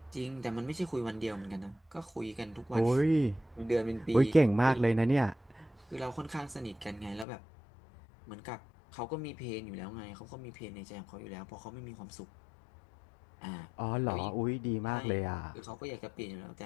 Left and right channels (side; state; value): right; drops out; at 7.2 s